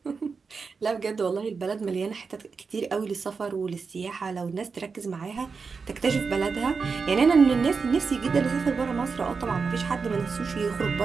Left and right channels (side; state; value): left; quieter; 5.0 dB